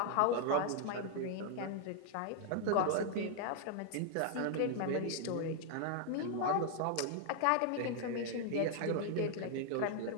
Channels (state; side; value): different; both; correlation 0.00